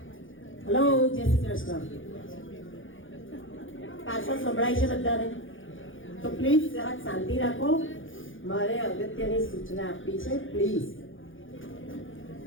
હેલો, જય શ્રી કૃષ્ણ. પાછળ સંભળાય છે બધાને? તો પ્લીઝ જરાક શાંતિ રાખો. મારે અગત્યની સૂચના આપવી છે. પ્લીઝ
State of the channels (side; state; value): right; late; 0.58 ms